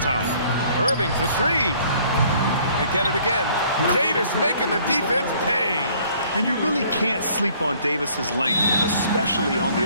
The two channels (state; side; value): inverted; both; correlation -0.59